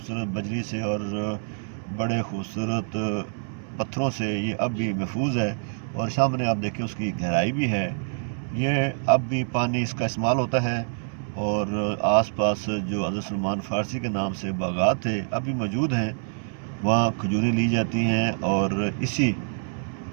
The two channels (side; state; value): left; silent; 61 dB below the other